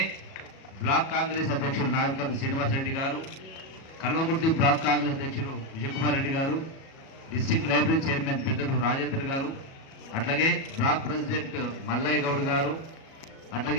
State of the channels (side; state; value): right; late; 37 ms